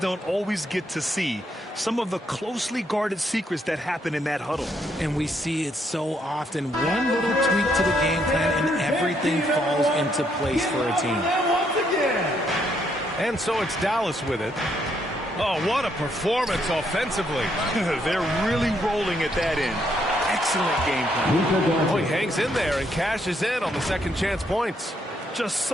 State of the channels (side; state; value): both; normal; correlation 0.74